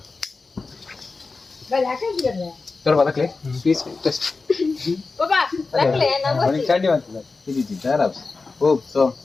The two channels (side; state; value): right; quieter; 4.0 dB